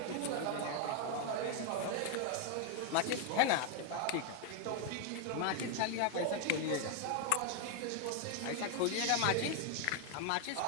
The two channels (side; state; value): both; different; correlation 0.01